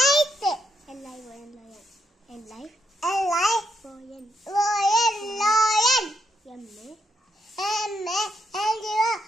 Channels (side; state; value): both; normal; correlation 0.78